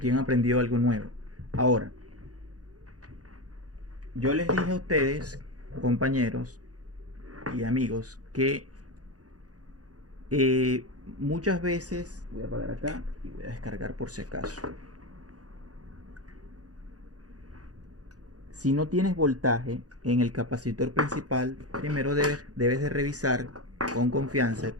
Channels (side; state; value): left; late; 0.67 ms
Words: han aprendido algo nuevo. Ahora, yo les dije a ustedes, compañeros y amigos, que muchas veces, voy a apagar acá y voy a descargar por si acaso. Si no tienes voltaje en el capacitor principal, primero debes de revisar con confianza,